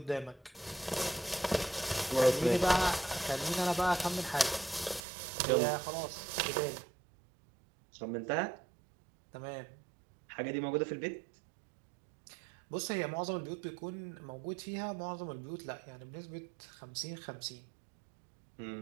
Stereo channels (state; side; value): drops out; left; at 5.0 s